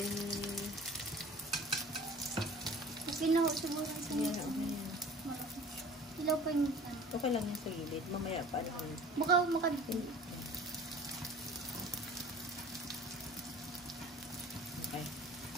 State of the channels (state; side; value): normal; both; correlation 0.45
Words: Okay na, siguro sa Ayan, okay. Ilaw pa yung Okay lang yung sa gilid. Mamaya pa lang. makadipin. Okay.